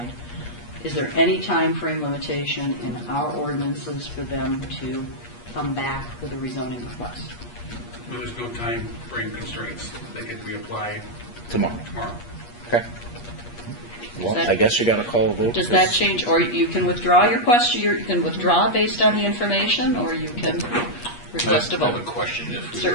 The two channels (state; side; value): late; right; 8.4 ms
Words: is there any time frame limitation in our ordinances for them to come back with a rezoning request? There's no time frame constraints. They can reapply tomorrow. Tomorrow. Okay. Well, I guess you got to call a vote. Does that change, or you can withdraw your question, you can withdraw based on the information, or you can request a I have vote? a question. If we